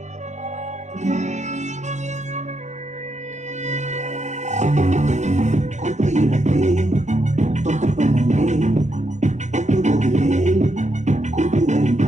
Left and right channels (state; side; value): late; left; 0.34 ms